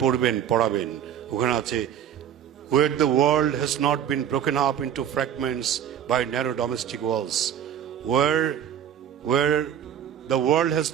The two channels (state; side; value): quieter; left; 9.6 dB